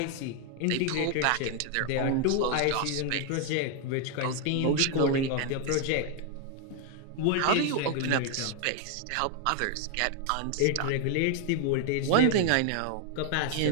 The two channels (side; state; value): both; different; correlation 0.00